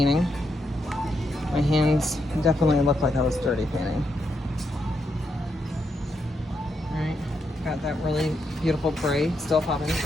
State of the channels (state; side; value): normal; both; correlation 0.81